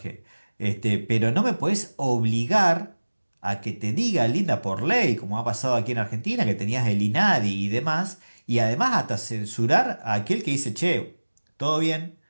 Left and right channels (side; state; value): both; inverted; correlation -1.00